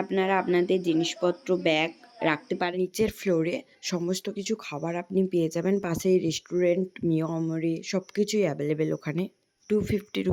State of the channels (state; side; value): identical; both; correlation 1.00